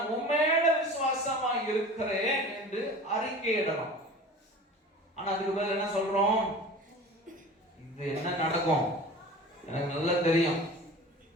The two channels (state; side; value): normal; both; correlation 0.38